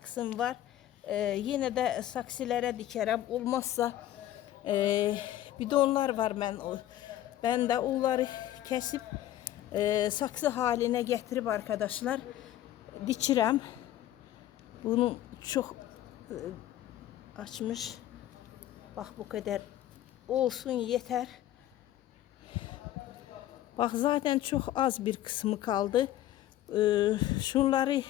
var. Yine de saksılara dikerim. Olmazsa bidonlar var ben de onları kesip saksı haline getirip arkadaşlar dikirəm. Bunu çok açmış. Bak bu kadar olsun yeter. Bak zaten çok az bir kısmı kaldı. Şunları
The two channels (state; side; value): quieter; right; 13.3 dB